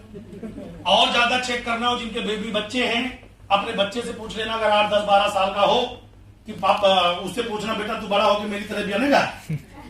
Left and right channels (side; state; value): both; identical; correlation 1.00